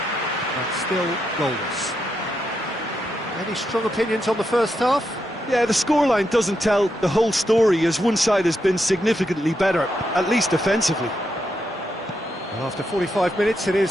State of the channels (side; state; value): both; normal; correlation 0.82